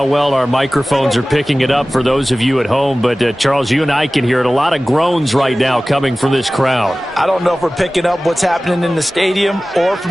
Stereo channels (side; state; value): both; normal; correlation 0.97